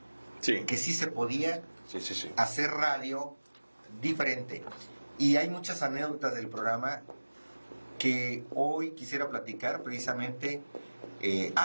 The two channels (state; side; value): inverted; both; correlation -1.00